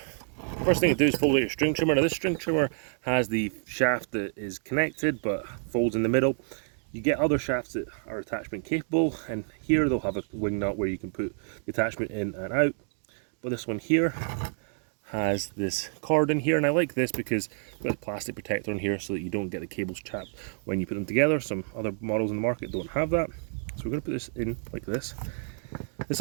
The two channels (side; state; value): left; silent; 58 dB below the other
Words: First thing to do is fold out your string trimmer. Now this string trimmer has the shaft that is connected but folds in the middle. You get other shafts that are attachment capable, and here they'll have a wing nut where you can put the attachment in and out. But this one here has this cord in here, and I like this because it's got a plastic protector in here so that you don't get the cables chapped when you put them together. Some other models in the market don't have that. So we're going to put this in like this. This